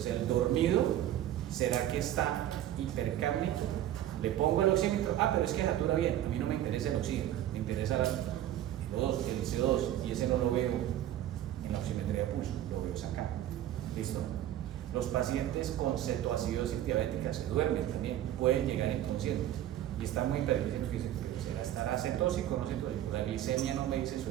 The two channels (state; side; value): quieter; left; 12.4 dB